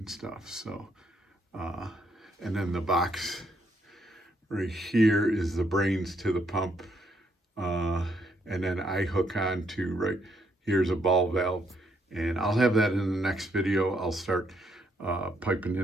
stuff. So, and then the box right here is the brains to the pump. And then I hook on to right here's a ball valve, and I'll have that in the next video. I'll start piping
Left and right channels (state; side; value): normal; both; correlation 0.73